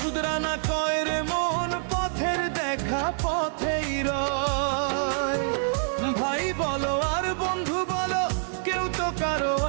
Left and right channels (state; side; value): silent; left; 61 dB below the other